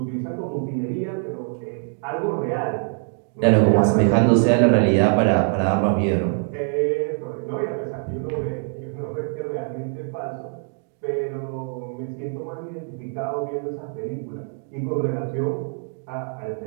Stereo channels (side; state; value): left; silent; 55 dB below the other